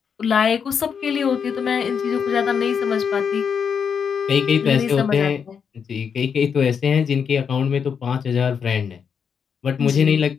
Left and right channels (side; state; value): right; quieter; 6.8 dB